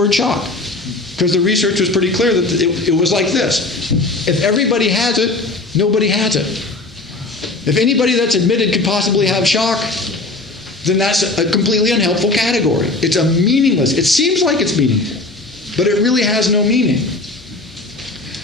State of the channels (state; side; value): quieter; right; 3.1 dB